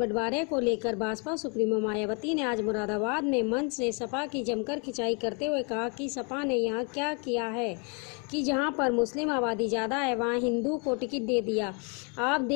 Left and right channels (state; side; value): quieter; right; 35.6 dB